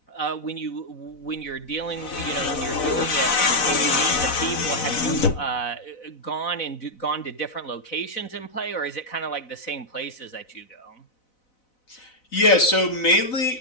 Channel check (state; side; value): late; right; 4.0 ms